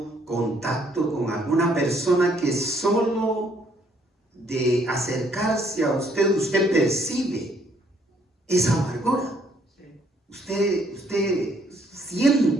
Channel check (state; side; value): normal; both; correlation 0.66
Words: contacto con alguna persona que solo de acercarse a usted percibe esa amargura? Usted